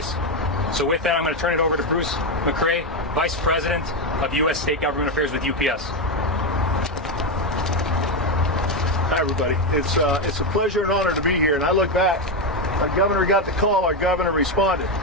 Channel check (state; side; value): normal; both; correlation 0.09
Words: So with that, I'm going to turn it over to Bruce McCrae, Vice President of U.S. State Government Affairs with UPS. Hi, everybody. It's a pleasure and honor to be here. And I look back, our governor got the call, our governor responded.